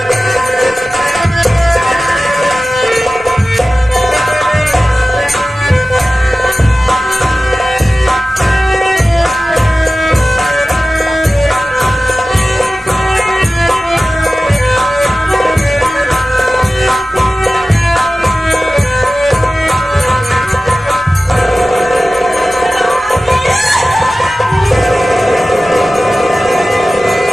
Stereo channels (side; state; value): both; normal; correlation 0.95